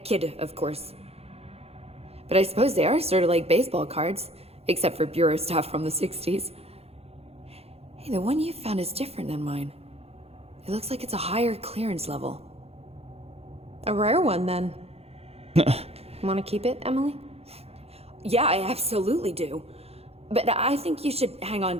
kid, of course. But I suppose they are sort of like baseball cards, except for Bureau stuff from the 60s. Hey, the one you found is different than mine. It looks like it's a higher clearance level. A rare one, then. Want to keep it, Emily? Yeah, I absolutely do. But I think you should hang on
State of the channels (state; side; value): late; left; 0.29 ms